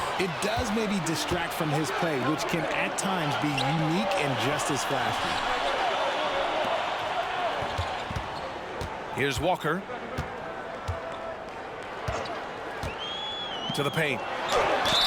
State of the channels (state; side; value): identical; both; correlation 1.00